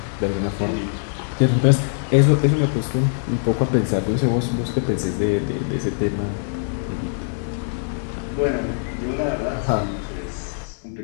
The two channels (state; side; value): silent; right; digital silence